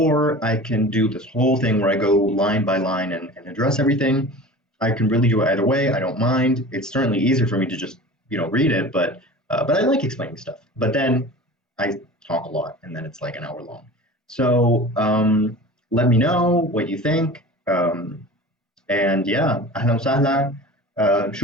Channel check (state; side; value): normal; both; correlation 0.37